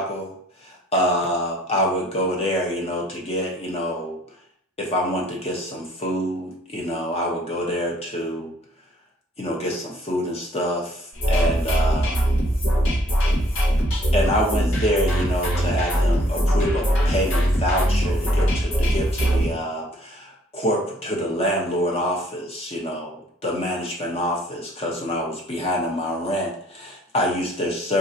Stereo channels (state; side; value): normal; both; correlation 0.59